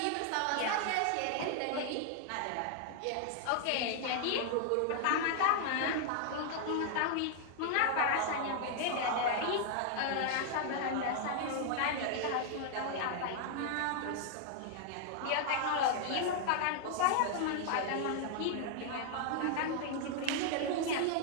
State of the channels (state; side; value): different; both; correlation 0.00